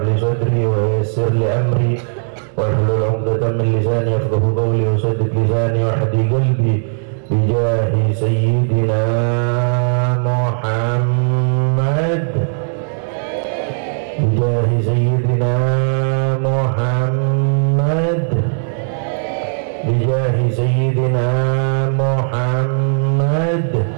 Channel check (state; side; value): silent; left; 68 dB below the other